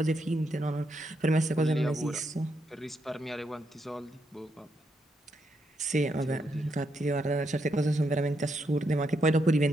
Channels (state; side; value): normal; both; correlation 0.79